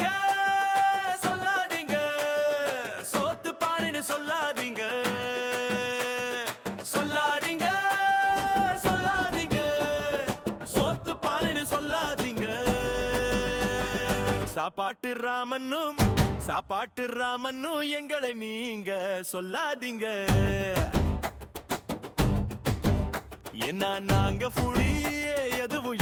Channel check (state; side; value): identical; both; correlation 1.00